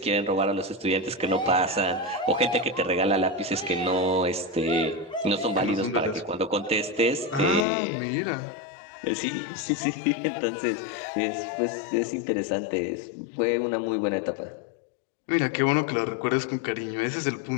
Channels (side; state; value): right; drops out; at 7.7 s